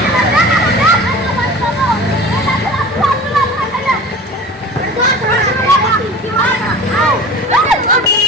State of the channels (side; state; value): both; normal; correlation 0.39